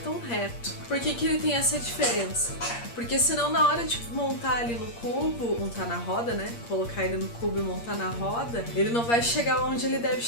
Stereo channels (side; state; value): right; late; 8.5 ms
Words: reto. Por que que ele tem essa diferença? Porque senão na hora de montar ali no cubo, montar na roda, né? Colocar ele no cubo e montar na roda, ele não vai chegar onde ele deve